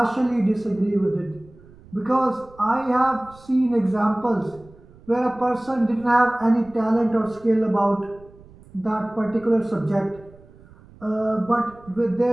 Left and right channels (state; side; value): noise; right; rumble, 24 dB below the sound